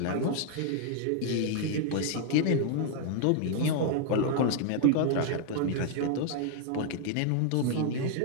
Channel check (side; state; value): both; different; correlation 0.00